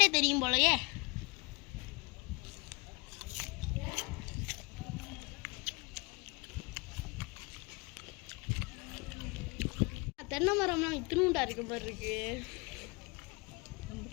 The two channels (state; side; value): quieter; right; 28.2 dB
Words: தெரியும் போலயே. தென்னை மரம்லாம் இத்தினூண்டா இருக்க மாதிரி இருக்கு.